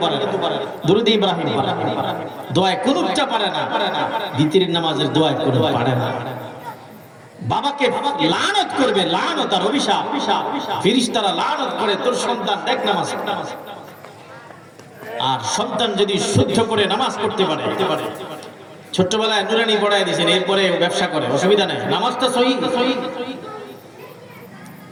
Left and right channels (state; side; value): identical; both; correlation 1.00